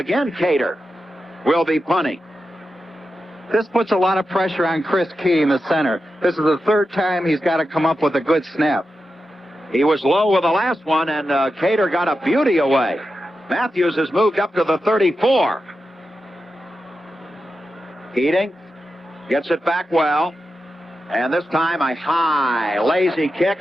Cater will be punting. This puts a lot of pressure on Chris Key in the center. This is the 3rd time he's got to come up with a good snap. He was low with the last one, and Cater got a beauty away. Matthews has moved up to the 34. Keating gets it back well. And this time a high, lazy kick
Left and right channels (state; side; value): normal; both; correlation 0.90